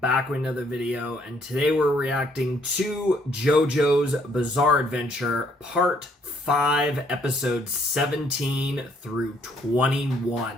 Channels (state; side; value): normal; both; correlation 0.67